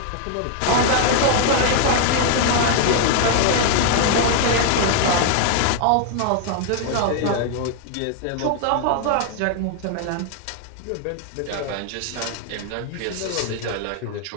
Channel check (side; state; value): both; different; correlation 0.00